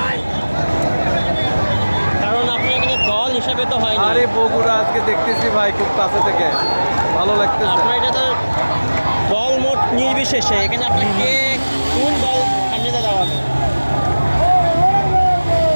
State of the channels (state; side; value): inverted; both; correlation -1.00